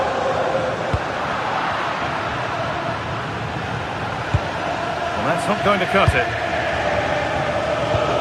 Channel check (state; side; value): identical; both; correlation 1.00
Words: Well, that's not going to cut it.